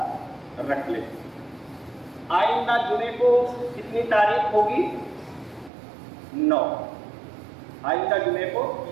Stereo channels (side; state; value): left; drops out; at 5.7 s